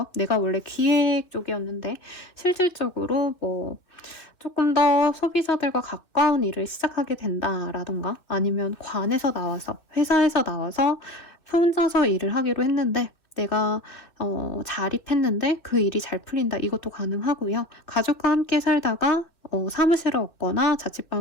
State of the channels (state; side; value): late; right; 2.5 ms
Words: 내가 원래 기획 쪽이었는데 실질적으로 뭐 조금 더 소비자들과 가까운 일을 시작하게 된다라던가, 아니면 관에서 나와서, 회사에서 나와서 혼자서 일을 하기로 했는데 내가 자립했는데 그 일이 잘 풀린다, 이것도 가능하고요. 가족과 함께 살다가 사무실을 얻거나